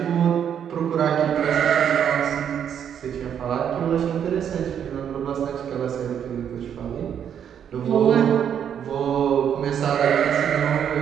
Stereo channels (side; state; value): left; quieter; 8.7 dB